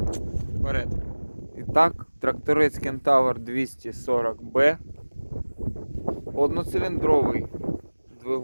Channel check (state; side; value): inverted; both; correlation -1.00